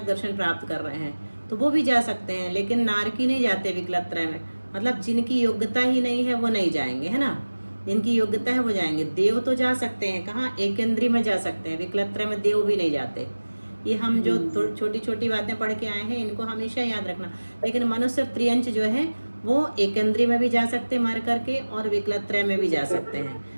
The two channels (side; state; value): both; inverted; correlation -1.00